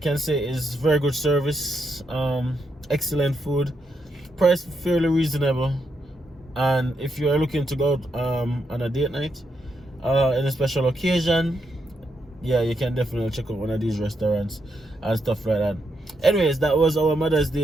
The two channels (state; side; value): normal; both; correlation 0.81